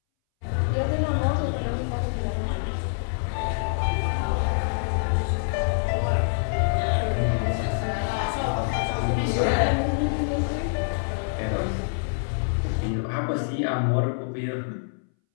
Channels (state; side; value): silent; right; 61 dB below the other